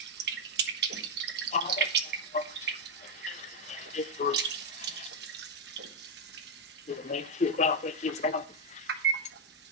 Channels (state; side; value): normal; both; correlation 0.02